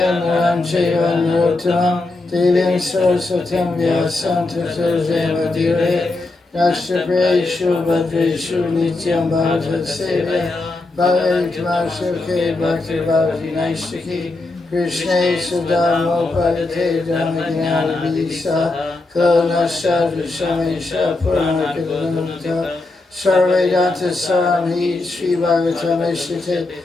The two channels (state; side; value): quieter; right; 3.2 dB